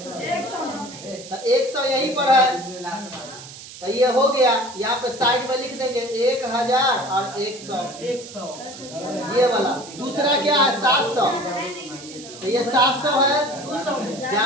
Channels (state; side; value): noise; right; hiss, 15 dB below the sound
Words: तो 100 यहीं पर है, तो ये हो गया। यहाँ पे साइड में लिख देंगे 1000 और 100, 100 ये वाला। दूसरा क्या है? 700, तो ये 700 है, 200 में